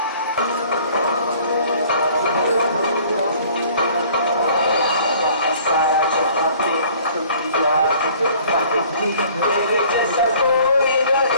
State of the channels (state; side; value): inverted; both; correlation -0.53